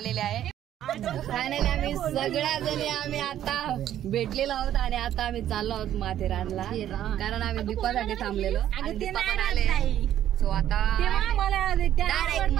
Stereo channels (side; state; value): left; quieter; 11.5 dB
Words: आहे. फायनली आम्ही सगळ्या जणी आम्ही आता भेटलेलो आहोत आणि आता आम्ही चाललो आहोत माथेरानला कारण आम्ही दीपासाठी थांबलेलो आणि दीपा पण आले. सो आता डायरेक्ट